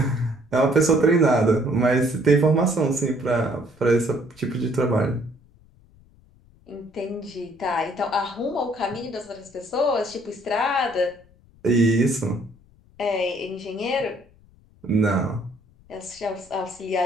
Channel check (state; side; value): noise; left; rumble, 28 dB below the sound